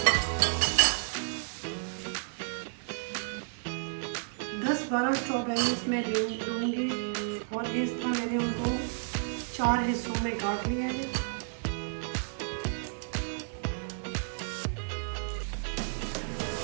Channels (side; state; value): left; silent; 57 dB below the other